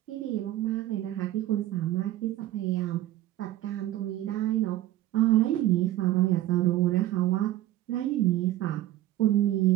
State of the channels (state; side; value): quieter; left; 14.3 dB